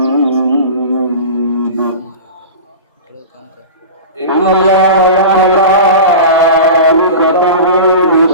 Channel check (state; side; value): inverted; both; correlation -0.31